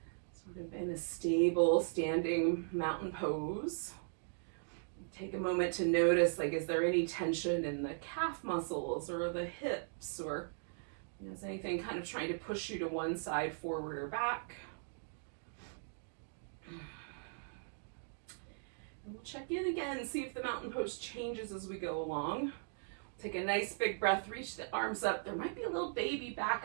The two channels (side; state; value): left; silent; digital silence